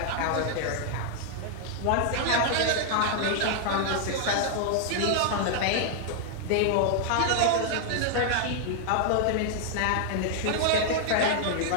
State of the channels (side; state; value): both; different; correlation -0.01